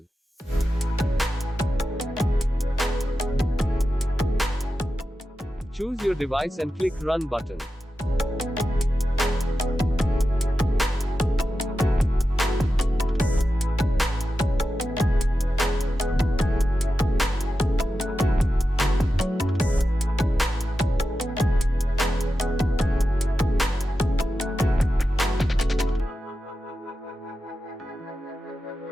Choose your device and click Run button.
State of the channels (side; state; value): both; normal; correlation 0.91